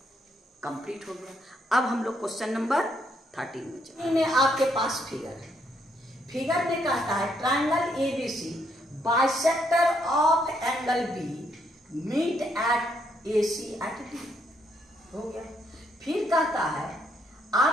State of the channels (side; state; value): both; normal; correlation 0.74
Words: कंप्लीट हो गया। अब हम लोग क्वेश्चन नंबर 13 में चलते हैं। आपके पास फिगर है, फिगर में कहता है triangle ABC bisector of angle B meet at AC at D, हो गया। फिर कहता है